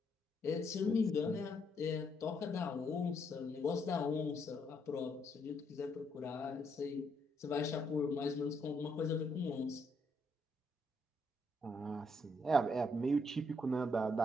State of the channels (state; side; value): normal; both; correlation 0.74